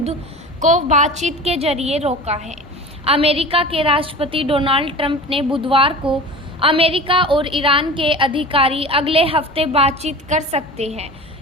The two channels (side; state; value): both; normal; correlation 0.35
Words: को बातचीत के जरिए रोका है। अमेरिका के राष्ट्रपति डोनाल्ड ट्रंप ने बुधवार को अमेरिका और ईरान के अधिकारी अगले हफ्ते बातचीत कर सकते हैं।